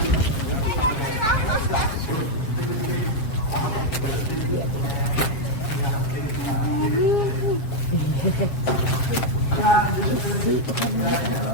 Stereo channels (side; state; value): right; late; 7.7 ms